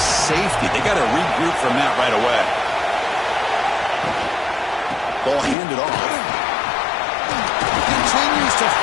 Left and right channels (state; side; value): drops out; right; at 5.6 s